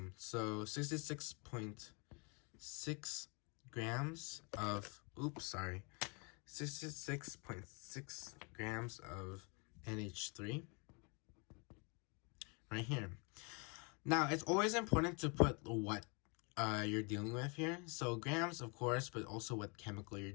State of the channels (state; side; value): quieter; right; 32.9 dB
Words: So 66.6 grams of 66.6 grams of NH3 right here. Now it's always important to put what you're dealing with here. So grams, of course, but also what chemical you're